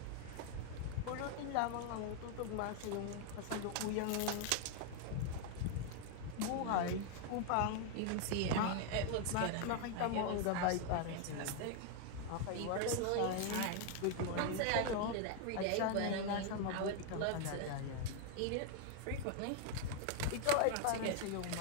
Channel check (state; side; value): different; both; correlation 0.01